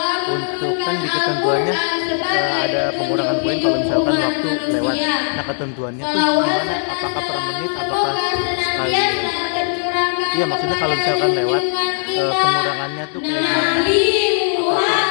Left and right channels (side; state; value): right; silent; digital silence